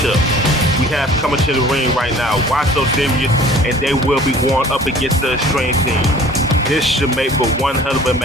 We have coming to the ring right now, Why So Serious, and they will be going up against the Extreme Team. This should make for one hell of a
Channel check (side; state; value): both; normal; correlation 0.49